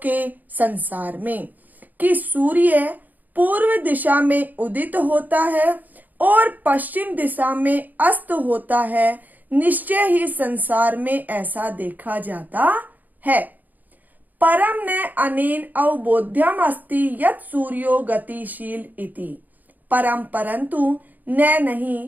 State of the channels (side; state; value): left; late; 0.083 ms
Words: संसार में, कि सूर्य पूर्व दिशा में उदित होता है और पश्चिम दिशा में अस्त होता है, निश्चय ही संसार में ऐसा देखा जाता है। परम न अनेन अवबोध्यम अस्ति यत् सूर्यो गतिशील इति। परम परंतु न